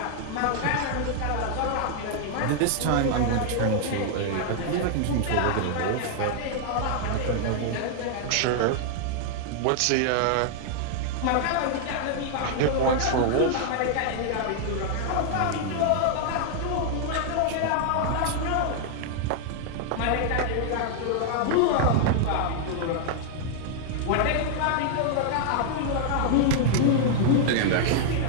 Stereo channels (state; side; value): different; both; correlation 0.00